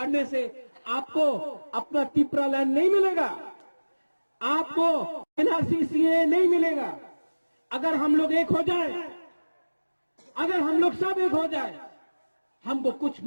से आपको अपना तिप्रा लैंड नहीं मिलेगा, आपको एनआरसी नहीं मिलेगा। अगर हम लोग एक हो जाए, अगर हम लोग सब एक हो जाए, हमको कुछ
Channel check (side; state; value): both; inverted; correlation -1.00